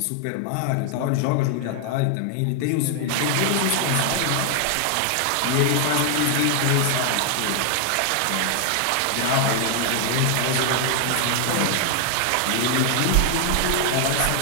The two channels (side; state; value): both; different; correlation 0.00